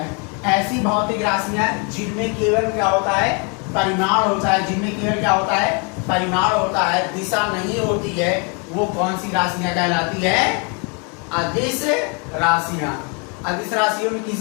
ऐसी भौतिक राशियां जिनमें केवल क्या होता है? परिमाण होता है, जिनमें केवल क्या होता है? परिमाण होता है, दिशा नहीं होती है, वो कौन सी राशियां कहलाती है? अदिश राशियां। अदिश राशियों में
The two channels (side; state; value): right; quieter; 34.7 dB